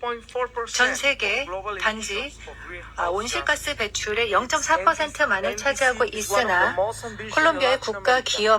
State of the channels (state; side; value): identical; both; correlation 1.00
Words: 전 세계 단지 온실가스 배출의 0.4%만을 차지하고 있으나 콜롬비아의 국가